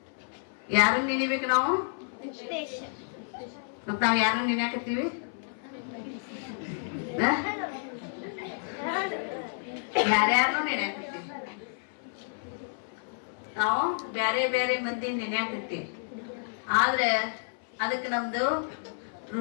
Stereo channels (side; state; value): right; silent; 58 dB below the other